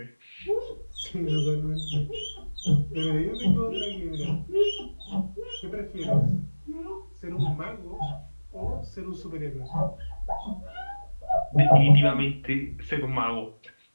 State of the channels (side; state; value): both; inverted; correlation -1.00